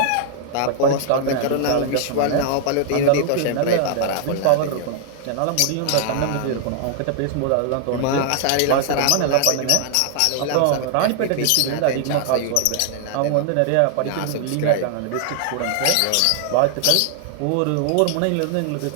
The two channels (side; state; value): both; different; correlation 0.00